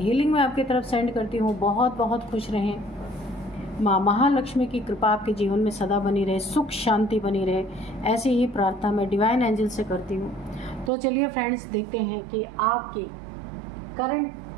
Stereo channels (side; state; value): left; drops out; at 10.9 s